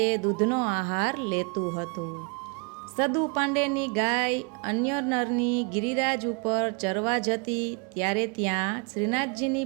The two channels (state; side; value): quieter; left; 34.6 dB